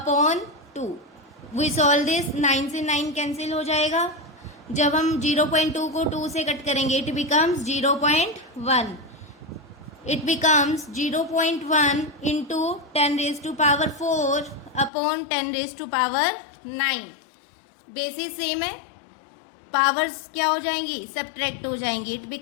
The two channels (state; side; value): drops out; right; at 14.9 s